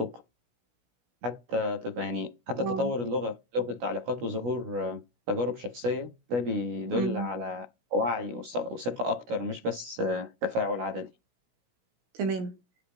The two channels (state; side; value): late; left; 16 ms